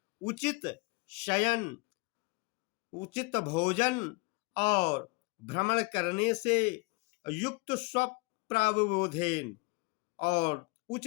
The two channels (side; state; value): right; quieter; 27.4 dB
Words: उचित शयन, उचित भोजन और भ्रमण करने से, युक्त स्वप्रावबोधेन और